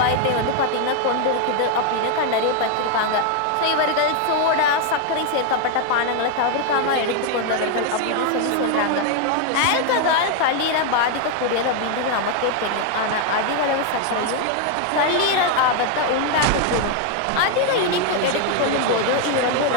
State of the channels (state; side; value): different; both; correlation 0.00